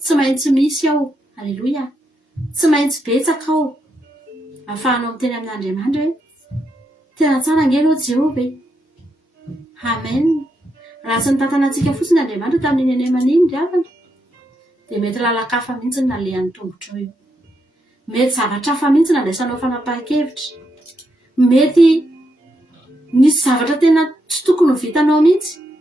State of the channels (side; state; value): both; normal; correlation 0.81